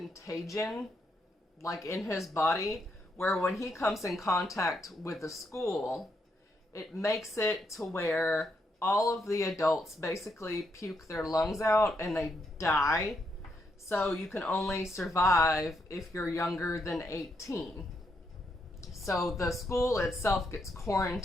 like in his body where when he comes in contact with the school, it makes it to where all of the adults basically puke their lungs out and they die. So you can only survive if you're younger than 18. So the school itself gets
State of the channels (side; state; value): both; normal; correlation 0.78